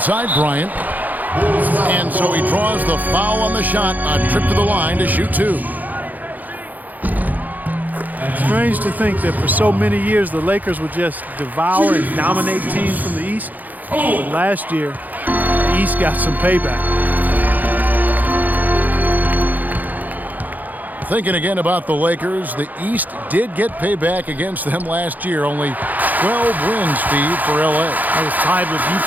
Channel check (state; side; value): late; left; 0.082 ms